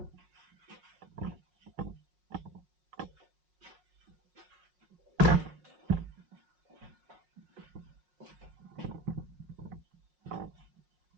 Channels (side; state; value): left; late; 5.5 ms